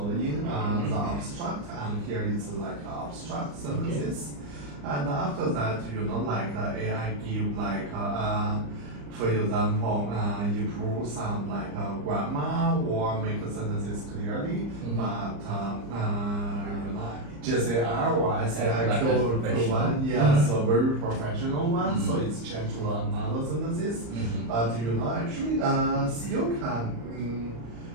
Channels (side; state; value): left; late; 34 ms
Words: the abstract, and here it's like abstract sentences, and after that like AI give like for example improve some like grammar or make the sentences clearly, but JCR or SAI Like a professional. Q1, yes, a very professional one, so it's changed to another sentences. But actually, still can